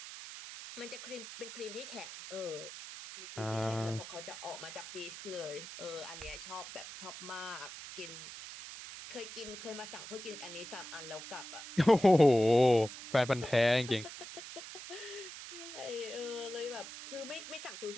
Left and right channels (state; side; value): noise; right; hiss, 11 dB below the sound